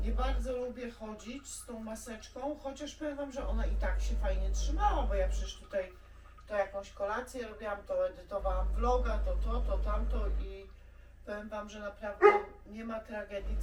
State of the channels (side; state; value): both; identical; correlation 1.00